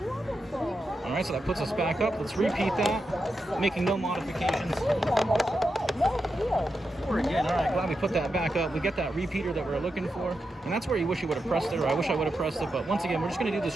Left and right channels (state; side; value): normal; both; correlation 0.87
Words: right, so that puts us back up. Let's repeat that, making no modifications. 4 again. All right, glad we put that back up. We get that repeater that we're looking for, and that's where you wish you would have pressed it, or I wish I would have pressed it. But once again, we're just going to do this